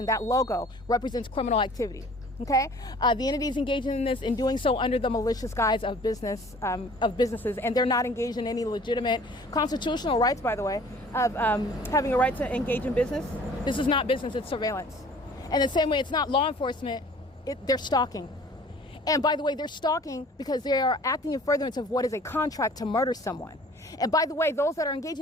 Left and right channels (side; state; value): both; normal; correlation 0.50